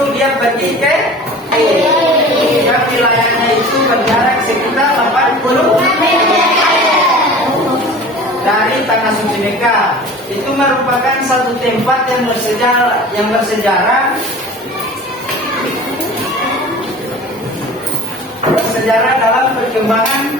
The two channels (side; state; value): both; normal; correlation 0.40